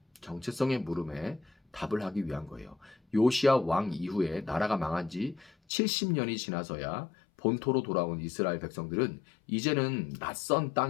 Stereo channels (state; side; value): drops out; right; at 5.5 s